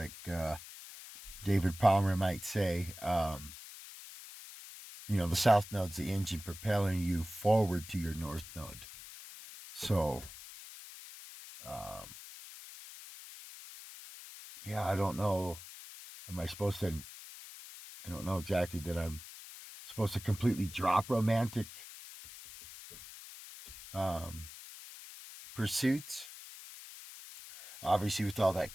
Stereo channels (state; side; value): noise; left; hiss, 14 dB below the sound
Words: David Palmer might say, the south node's the engine propelling you forward to your north node. So, yeah, I don't know. Am I supposed to? I don't know exactly that I'm supposed to completely drop romantic um, pursuits. Obviously, with all that